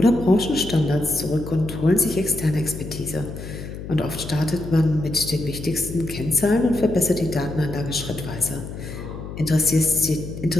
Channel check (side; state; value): left; noise; hum, 10 dB below the sound